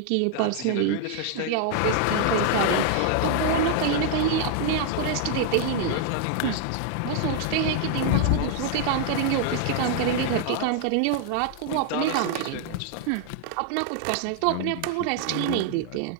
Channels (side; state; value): both; different; correlation 0.00